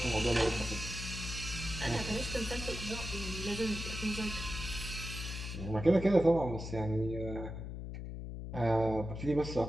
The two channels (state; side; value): noise; left; hum, 7 dB below the sound